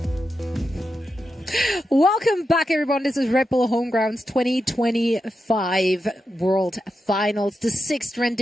Welcome back, everyone. This is Red Bull Homegrounds 2025 World Finals, the 6th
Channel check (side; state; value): both; normal; correlation 0.88